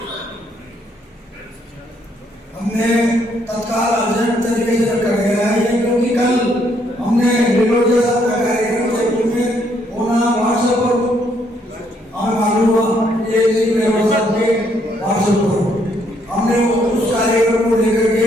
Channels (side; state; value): both; normal; correlation 0.71